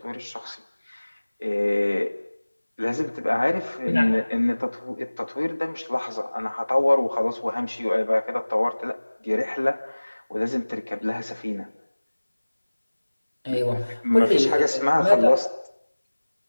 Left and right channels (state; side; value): inverted; both; correlation -1.00